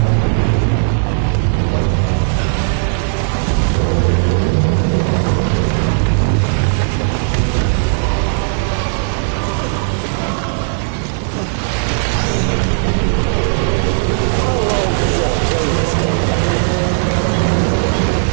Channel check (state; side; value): silent; left; 69 dB below the other